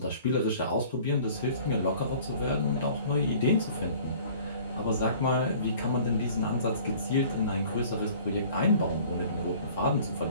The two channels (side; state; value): both; inverted; correlation -0.50